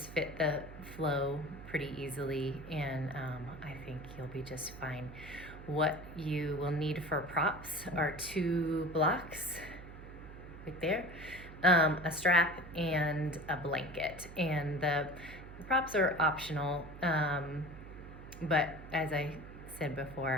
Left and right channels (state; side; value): noise; right; hum, 14 dB below the sound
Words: fit the flow pretty easily, and I think you'll be just fine. What you will need for props are 2 blocks right there, a strap, and a blanket. And the props are optional, but as I said